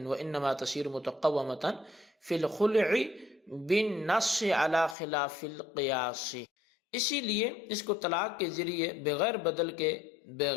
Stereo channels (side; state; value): right; drops out; at 5.0 s